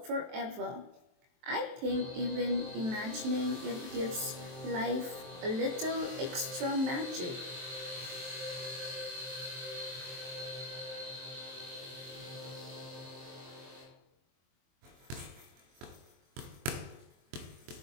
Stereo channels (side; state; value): left; late; 23 ms